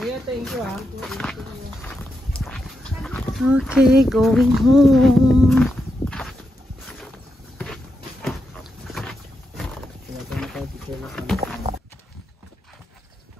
thank you ha. Okay, going home.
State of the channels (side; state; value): both; normal; correlation 0.86